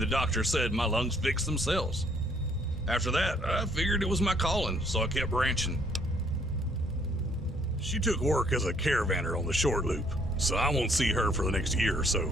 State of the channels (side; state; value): both; normal; correlation 0.65